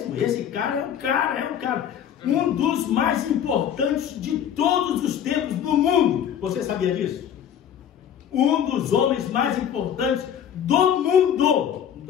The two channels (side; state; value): right; quieter; 9.2 dB